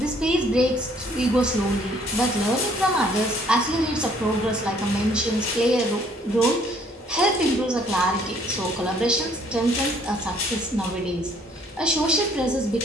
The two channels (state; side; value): normal; both; correlation 0.62